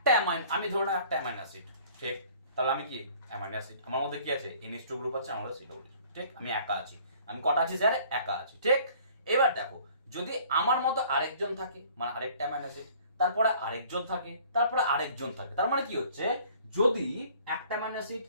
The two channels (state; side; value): inverted; both; correlation -0.53